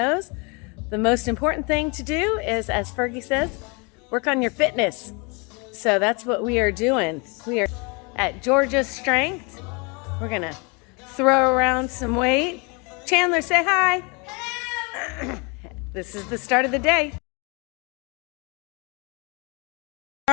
the most important thing to do is, as Fergie says, work on your fitness. So that's what we are doing. We are at Georgia's Strength. We're gonna throw around some weight. Chandler, say hi. This is the start of the day.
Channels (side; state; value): right; quieter; 31.0 dB